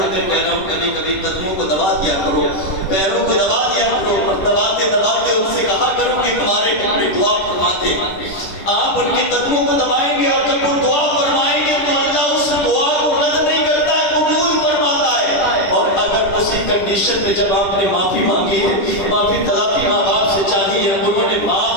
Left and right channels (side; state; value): right; late; 10 ms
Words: کر کہہ رہا ہوں، کبھی کبھی قدموں کو دبا دیا کرو، پیروں کو دبا دیا کرو، اور دباتے دباتے ان سے کہا کرو کہ تمہارے ٹکڑے دعا فرماتے۔ آپ ان کے قدموں کو دبائیں گے اور جب وہ دعا فرمائیں گے تو اللہ اس دعا کو رد نہیں کرتا ہے، قبول فرماتا ہے۔ اور اگر اسی کنڈیشن میں جب آپ نے معافی مانگی ہے، معافی تلافی ماں باپ سے چاہی ہے، انہوں نے